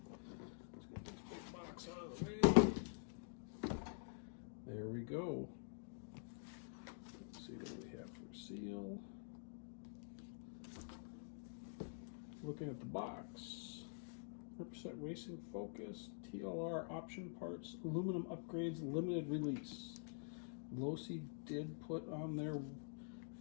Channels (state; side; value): silent; right; digital silence